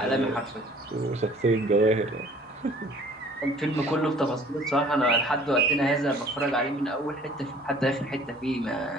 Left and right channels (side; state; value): both; normal; correlation 0.53